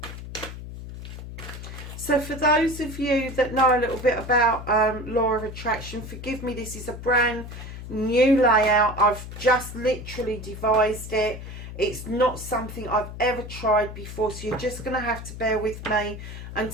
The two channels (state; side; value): noise; left; hum, 11 dB below the sound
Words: So for those of you that know a little bit about Law of Attraction, forgive me, this is a brand new layout. I've just literally devised it. It's not something I've ever tried before, so you're just going to have to bear with me